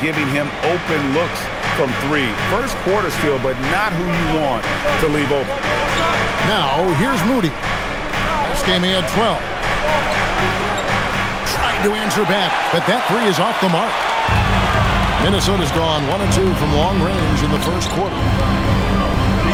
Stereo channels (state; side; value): identical; both; correlation 1.00